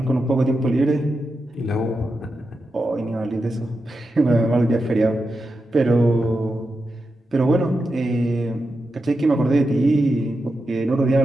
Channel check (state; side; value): normal; both; correlation 0.88